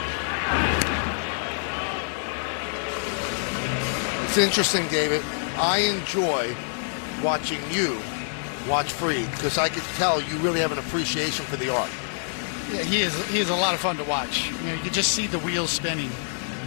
It's interesting, David. I enjoy watching you watch Fried because I could tell you really have an appreciation for the art. Yeah, he is a lot of fun to watch. You know, you can just see the wheels spinning.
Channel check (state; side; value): silent; right; 61 dB below the other